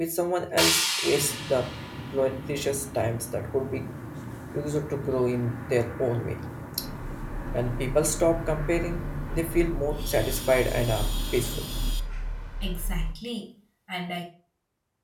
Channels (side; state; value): both; identical; correlation 1.00